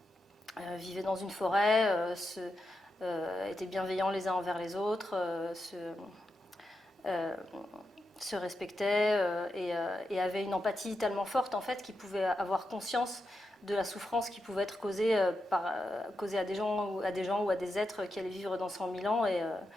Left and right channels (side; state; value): both; normal; correlation 0.87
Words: vivaient dans une forêt, étaient bienveillants les uns envers les autres, se respectaient et avaient une empathie tellement forte en fait qu'ils pouvaient avoir conscience de la souffrance qui pouvait être causée à des gens ou à des êtres qui allaient vivre dans 100 000 ans.